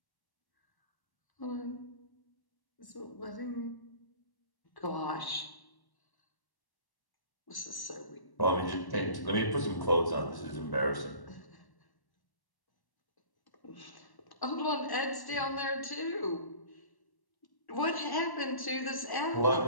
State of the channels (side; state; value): right; late; 1.1 ms